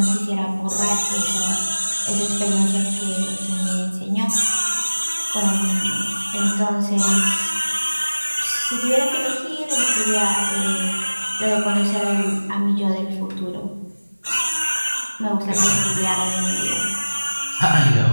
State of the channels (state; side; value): inverted; both; correlation -1.00